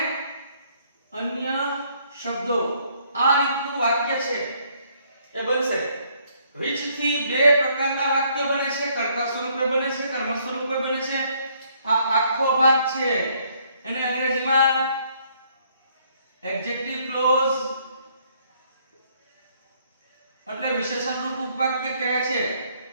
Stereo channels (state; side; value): inverted; both; correlation -0.66